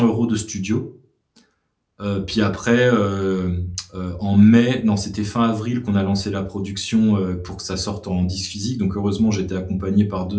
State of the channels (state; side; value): identical; both; correlation 1.00